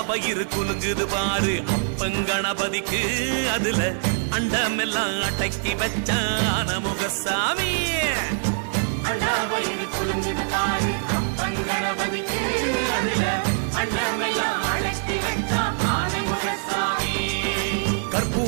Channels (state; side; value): silent; left; digital silence